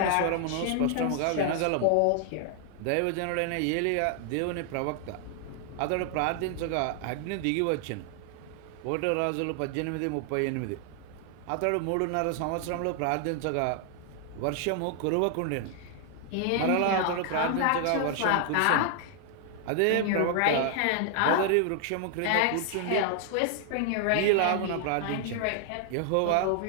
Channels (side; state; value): both; different; correlation 0.00